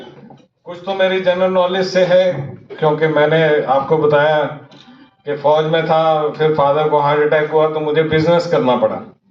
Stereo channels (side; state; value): both; identical; correlation 1.00